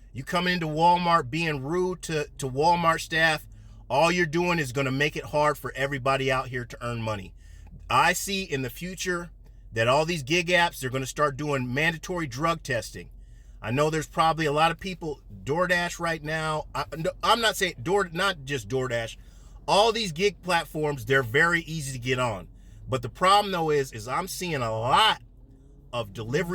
You coming into Walmart being rude to Walmart staff. All you're doing is going to make it hard for everybody out here to earn money. I see in the future that all these gig apps, they're going to start doing mandatory drug testing. I know there's probably a lot of people, DoorDash right now. I'm not saying not just DoorDash. All these gig platforms, they're very easy to get on. But the problem though is I'm seeing a lot of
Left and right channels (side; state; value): both; identical; correlation 1.00